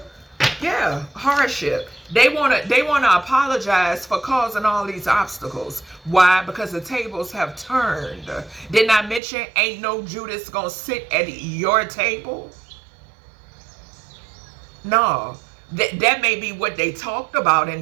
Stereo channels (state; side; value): drops out; left; at 9.2 s